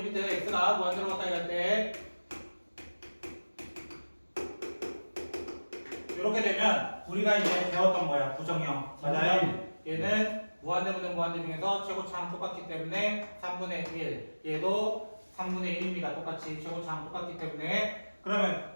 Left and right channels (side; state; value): both; inverted; correlation -1.00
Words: x가 무한대로 가까이 갈 때 이렇게 되면 우리가 이제 배웠던 거야. 부정형. 맞아요? 얘는 무한대분의 무한대 중에서 최고차항 똑같기 때문에 3분의 1. 얘도 3분의 1입니다. 똑같이 최고차항 똑같기 때문에 그러면